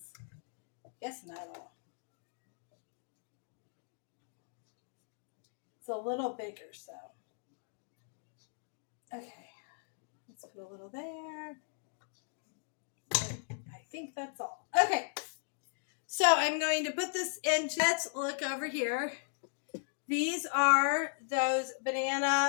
I guess, metal. It's a little bigger, so. Okay, let's put a little there. I think that's all. Okay, so I'm going to put this into, let's look over here. These are those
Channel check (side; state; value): right; silent; digital silence